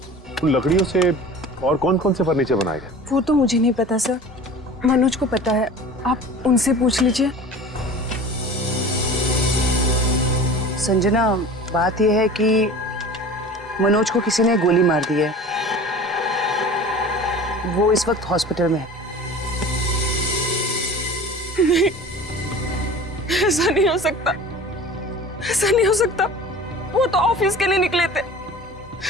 उन लकड़ियों से और कौन कौन से फर्नीचर बनाए गए? वो तो मुझे नहीं पता सर, मनोज को पता है, आप उनसे पूछ लीजिए। संजना, बात यह है कि मनोज को किसी ने गोली मार दी है। वो इस वक्त हॉस्पिटल में है। नहीं, ऐसा नहीं हो सकता, ऐसा नहीं हो सकता। वो तो ऑफिस के लिए निकले थे।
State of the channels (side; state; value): both; normal; correlation 0.39